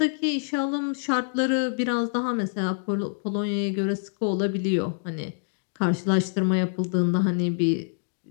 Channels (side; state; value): right; silent; digital silence